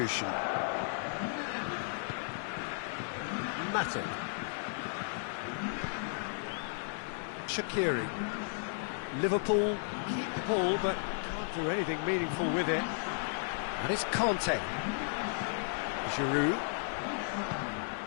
Matip. Shaqiri. Liverpool keep the ball, but can't do anything meaningful with it. And it's Kanté. Giroud.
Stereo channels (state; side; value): silent; right; digital silence